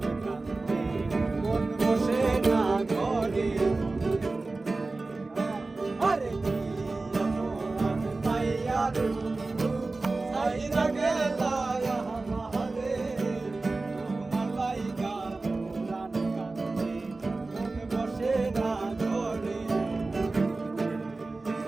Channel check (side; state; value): left; quieter; 3.4 dB